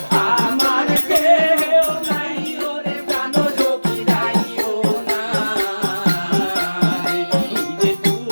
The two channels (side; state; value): both; inverted; correlation -1.00